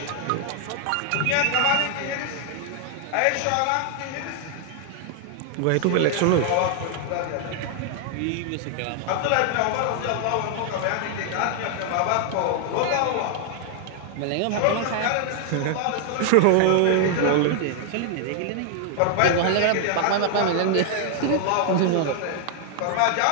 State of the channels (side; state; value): both; different; correlation 0.00